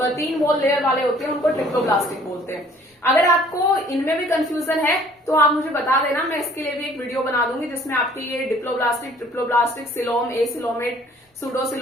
3 वॉल लेयर वाले होते हैं उनको ट्रिप्लोब्लास्टिक बोलते हैं। अगर आपको इनमें भी कंफ्यूजन है तो आप मुझे बता देना, मैं इसके लिए भी एक वीडियो बना दूंगी जिसमें आपकी ये diploblastic, triploblastic, coelom, acoelomate,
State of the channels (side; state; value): both; normal; correlation 0.56